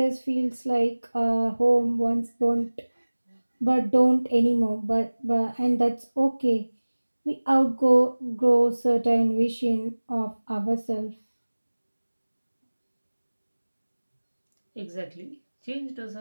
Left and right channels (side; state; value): both; inverted; correlation -1.00